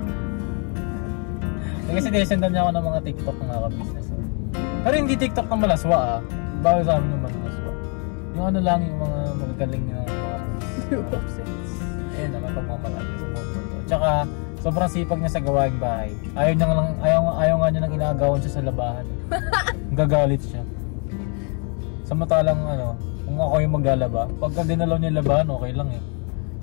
Kasi sinesendan niya ako ng mga TikTok ng mga kabisnes. Pero hindi TikTok ng malaswa Bawal sa amin ng malaswa. Yung ano lang, yung mga magagaling ng mga moves. Ayun naman, pagmamalaki sa moves. Tsaka, sobrang sipag niya sa gawaing bahay. Ayaw nga niya nang inaagawan siya sa labahan. Gagalit siya. Samantalang kung ako yung maglalaba, pagka dinalaw niya labahan, okay lang eh.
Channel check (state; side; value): quieter; right; 38.3 dB